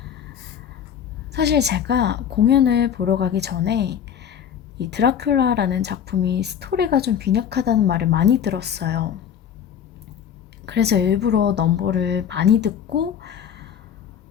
사실 제가 공연을 보러 가기 전에 이 드라큘라라는 작품이 스토리가 좀 빈약하다는 말을 많이 들었어요. 그래서 일부러 넘버를 많이 듣고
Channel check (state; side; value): quieter; right; 8.7 dB